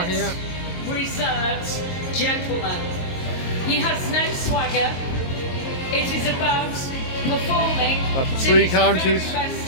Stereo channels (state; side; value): late; right; 22 ms